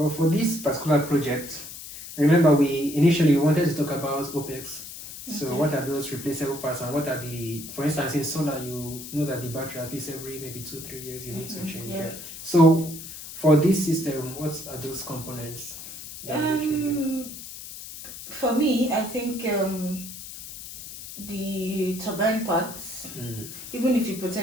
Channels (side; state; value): left; noise; hiss, 12 dB below the sound